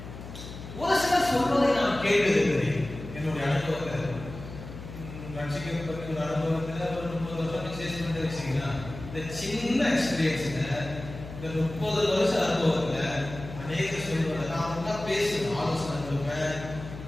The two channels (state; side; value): noise; left; hum, 12 dB below the sound